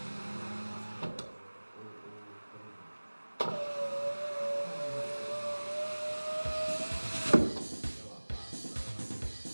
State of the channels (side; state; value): both; inverted; correlation -1.00